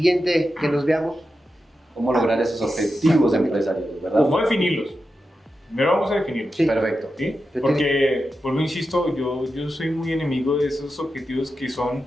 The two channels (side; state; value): both; normal; correlation 0.90